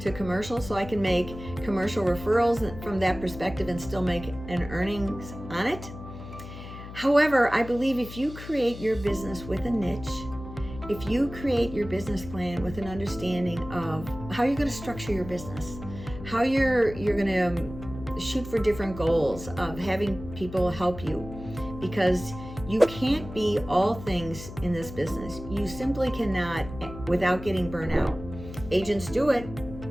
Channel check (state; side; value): noise; left; hum, 12 dB below the sound